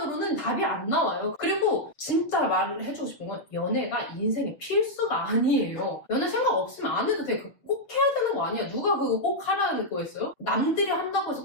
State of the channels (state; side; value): late; right; 7.0 ms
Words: 답이 안 나와요. 그리고 진짜 말을 해주고 싶은 건 연애가 인생의 필수가 아니에요. 연애 생각 없으면 안 해도 돼. 꼭 해야 되는 거 아니야. 누가 그거 꼭 하라는 거였어요? 남들이 한다고 해서